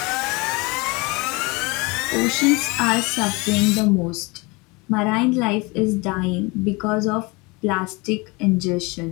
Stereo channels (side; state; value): right; quieter; 26.2 dB